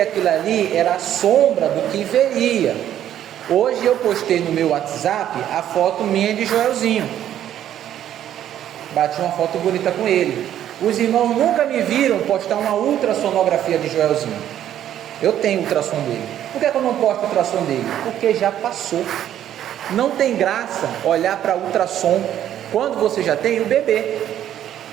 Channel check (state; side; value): quieter; left; 11.1 dB